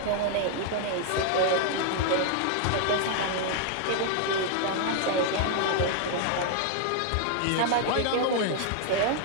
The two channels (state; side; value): different; both; correlation 0.00